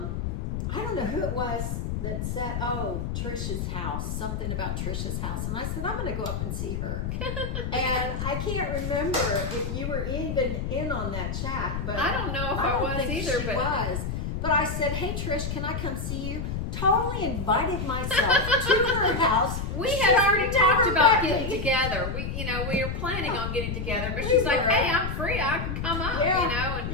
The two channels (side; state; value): left; noise; rumble, 3 dB below the sound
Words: I don't know who it was that said, "Oh, Trisha's house," something about Trisha's house, and I said, "I'm going to go up and see her." And I can't remember if you were even in on that chat, but I don't know if I I don't was think either, she but was. But I said, "Hey, Trish, can I come see you?" Totally invited myself to her house. we She's had already talked never about met getting me. together. We were planning on getting together, but We she's like, were. "Hey, I'm free. I can come up." Yeah, You know,